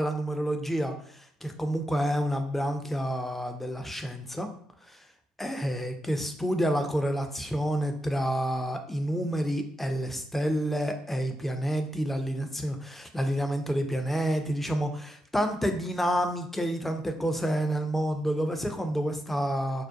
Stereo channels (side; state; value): both; normal; correlation 0.87